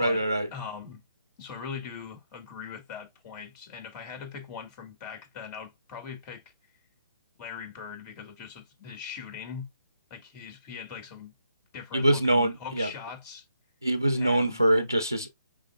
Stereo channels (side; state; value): both; inverted; correlation -0.81